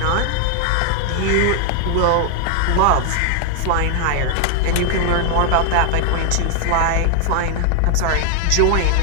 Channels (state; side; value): different; both; correlation 0.00